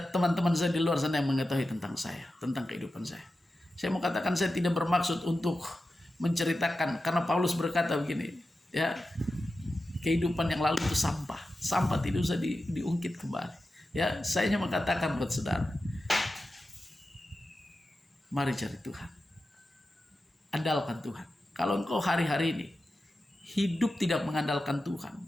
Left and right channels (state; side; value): normal; both; correlation 0.92